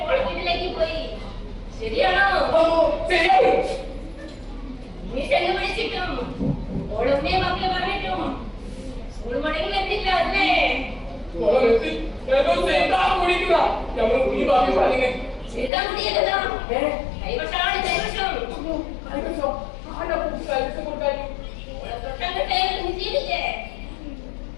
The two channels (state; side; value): drops out; right; at 15.7 s